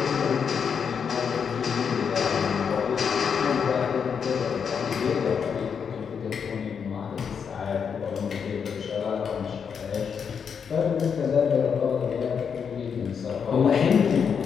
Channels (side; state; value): right; quieter; 6.8 dB